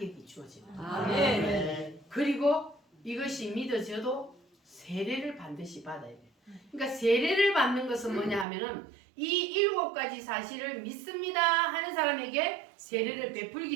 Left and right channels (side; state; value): left; drops out; at 8.5 s